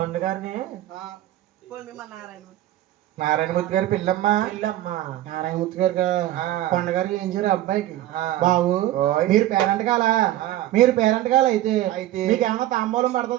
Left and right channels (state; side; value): quieter; left; 14.2 dB